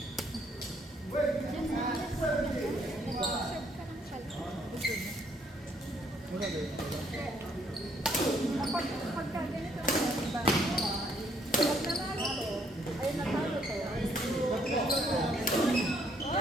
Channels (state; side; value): normal; both; correlation 0.68